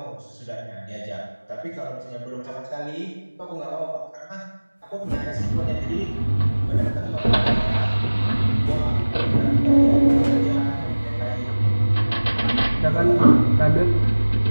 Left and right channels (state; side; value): inverted; both; correlation -1.00